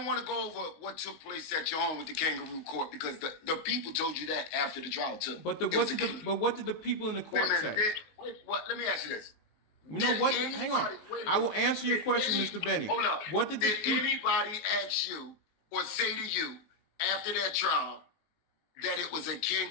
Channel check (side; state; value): right; late; 19 ms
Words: want to go over what took place at your home with the kangaroo court because the people told you that after the trial too. But what did the people in the court Wait a say? minute. What? Let me ask you this. No, what? Did Hang on. anybody- wait a I will minute. answer your Did question, any- Mr. Benny. Hold up. What did anybody ask you or say to you after that trial that it was a